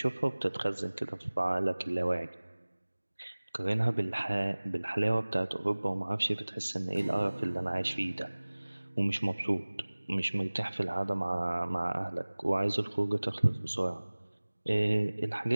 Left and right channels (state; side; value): inverted; both; correlation -1.00